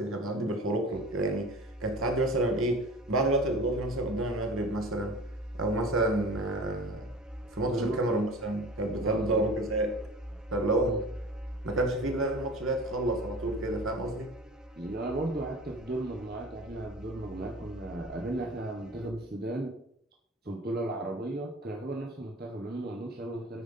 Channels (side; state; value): both; normal; correlation 0.39